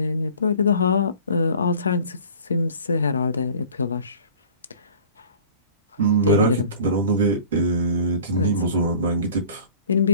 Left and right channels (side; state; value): both; inverted; correlation -0.45